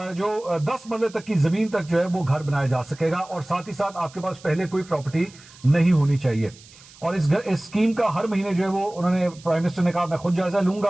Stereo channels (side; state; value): right; noise; hiss, 23 dB below the sound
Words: جو 10 مرلے تک کی زمین تک جو ہے وہ گھر بنایا جا سکے گا, اور ساتھ ہی ساتھ آپ کے پاس پہلے کوئی پراپرٹی نہیں ہونی چاہیے. اور اس اسکیم کا ہر مہینے جو ہے وہ انہوں نے پرائم منسٹر نے کہا میں خود جائزہ لوں